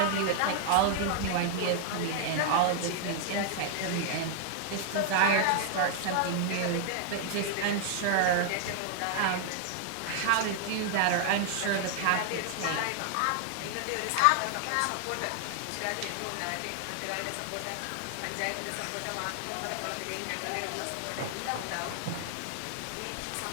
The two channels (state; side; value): different; both; correlation 0.00